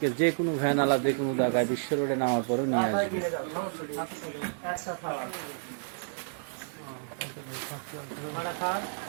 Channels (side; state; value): left; silent; digital silence